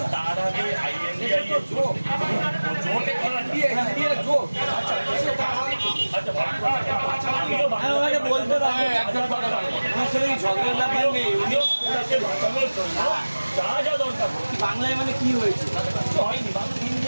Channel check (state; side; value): inverted; both; correlation -1.00